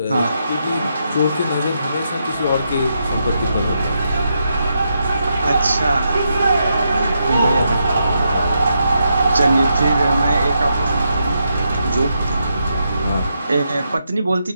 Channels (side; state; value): both; inverted; correlation -0.82